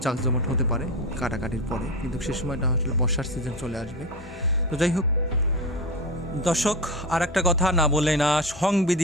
জাঁকজমট হতে পারে কাটাকাটির পরে, কিন্তু সে সময়টা আসলে বর্ষার সিজন চলে আসবে। তো যাই হোক দর্শক, আর একটা কথা না বললে না,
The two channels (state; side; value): normal; both; correlation 0.22